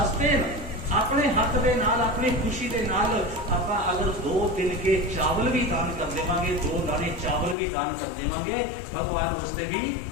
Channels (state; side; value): drops out; right; at 7.6 s